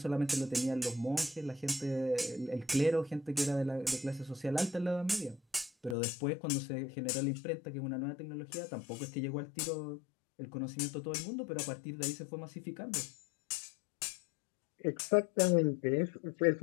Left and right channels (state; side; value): drops out; right; at 6.0 s